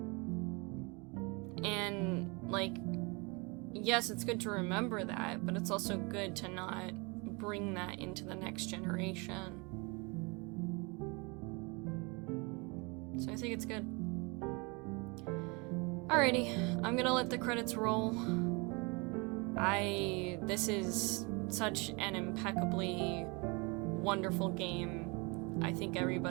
And like, yes, it's good to remember that, but it's also good to not bring that into the next generation. So I think it's good. Alrighty, I'm gonna let the credits roll. This is such an impeccably wonderful game. I think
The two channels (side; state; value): left; quieter; 29.1 dB